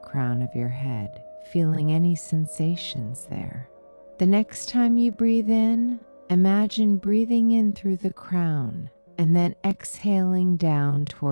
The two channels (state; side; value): inverted; both; correlation -1.00